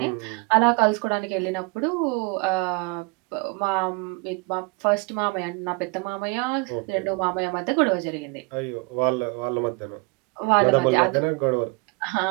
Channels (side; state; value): left; quieter; 29.1 dB